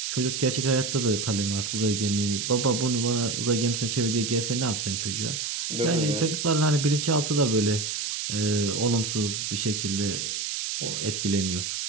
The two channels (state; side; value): noise; right; hiss, 3 dB below the sound